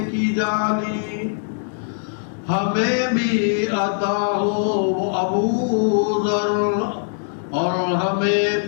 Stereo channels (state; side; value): silent; right; digital silence